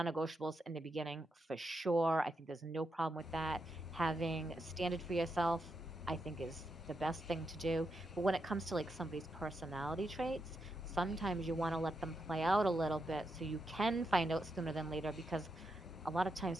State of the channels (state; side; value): normal; both; correlation 0.84